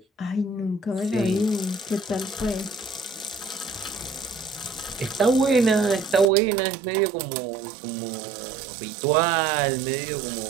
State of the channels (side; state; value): left; drops out; at 6.2 s